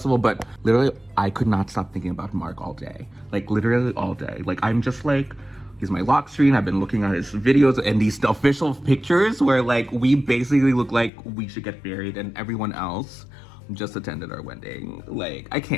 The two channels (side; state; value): right; drops out; at 11.1 s